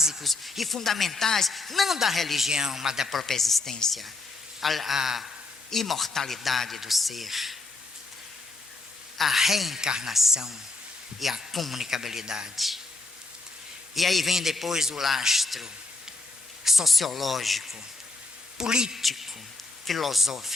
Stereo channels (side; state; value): right; quieter; 3.3 dB